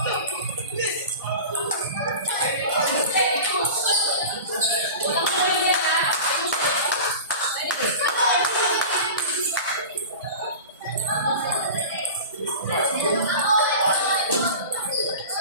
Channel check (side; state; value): both; inverted; correlation -0.33